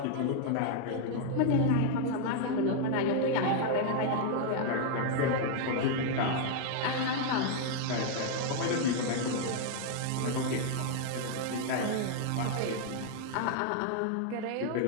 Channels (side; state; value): both; different; correlation 0.00